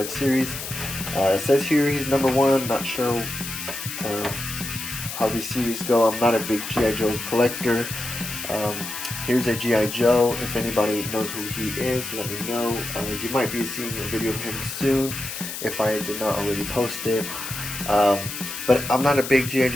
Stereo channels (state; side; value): noise; left; hiss, 7 dB below the sound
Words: series. It says here he's #1. Not sure how these series go. I'm not a big G.I. Joe collector. Here's a G.I. Joe. If anybody knows who he is, let me know. You might be seeing a video of him soon if I did not already post it. But I'm not a big G.I.